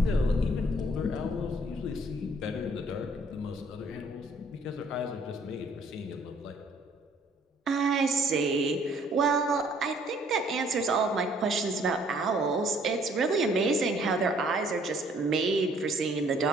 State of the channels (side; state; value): both; normal; correlation 0.61